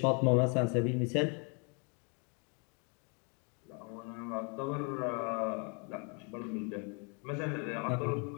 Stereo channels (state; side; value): quieter; right; 36.1 dB